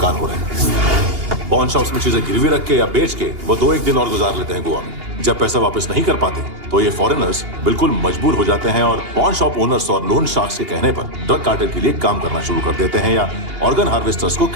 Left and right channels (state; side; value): late; left; 2.8 ms